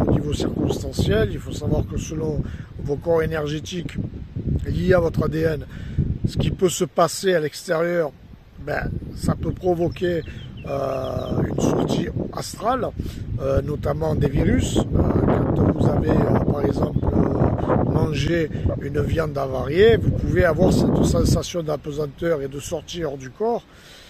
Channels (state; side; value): identical; both; correlation 1.00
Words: niveau circonstanciel. Il faut savoir que selon vos corps énergétiques liés à votre ADN, ce qui peut se passer à l'extérieur, ça peut provoquer une sortie astrale, notamment des virus. Quand vous avez par exemple mangé une viande avariée, vous pouvez avoir cette sensation d'apesanteur et de sortie hors du corps,